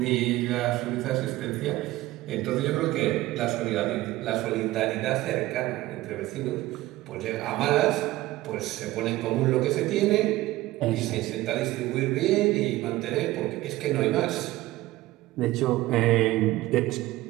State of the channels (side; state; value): left; quieter; 17.2 dB